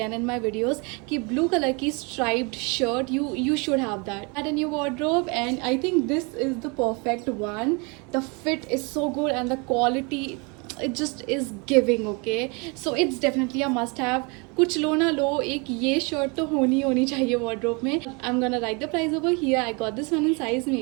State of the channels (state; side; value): quieter; left; 30.9 dB